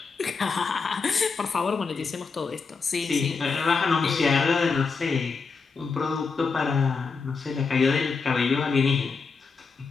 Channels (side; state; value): right; quieter; 4.8 dB